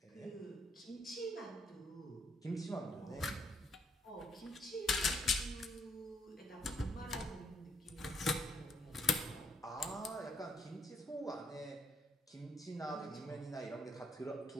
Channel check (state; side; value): normal; both; correlation 0.73